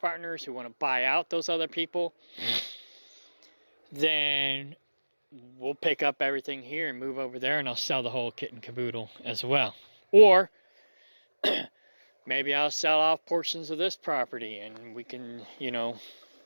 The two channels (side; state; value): both; inverted; correlation -1.00